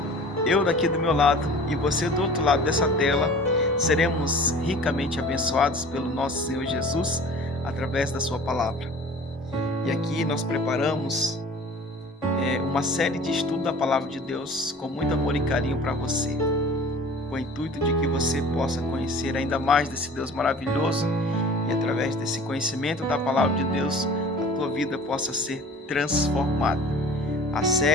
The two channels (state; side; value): normal; both; correlation 0.44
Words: eu daqui do meu lado e você do outro lado dessa tela, seremos ricamente abençoados pelo nosso Senhor Jesus através da sua palavra. E aqui nós preparamos uma série de estudo da palavra de Deus com muito amor e carinho para você, com o intuito de que você possa conhecer ainda mais desse Deus maravilhoso e através desse conhecimento da palavra de Deus, a tua vida possa ser transformada. A